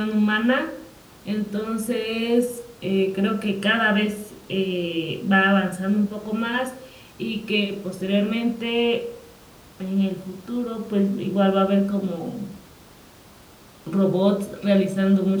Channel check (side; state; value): both; identical; correlation 1.00